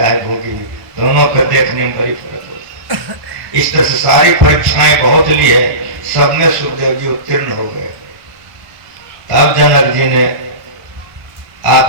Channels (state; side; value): late; left; 1.2 ms